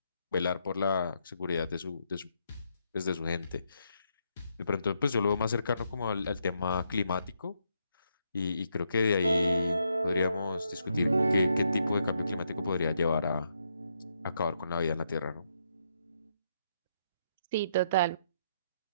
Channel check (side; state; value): both; inverted; correlation -0.78